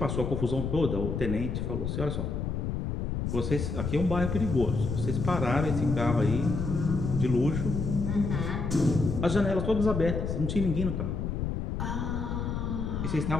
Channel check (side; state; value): left; noise; rumble, 2 dB below the sound